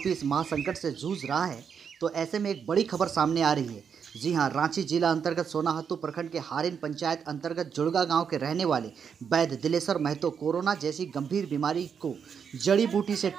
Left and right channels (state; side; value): quieter; left; 7.0 dB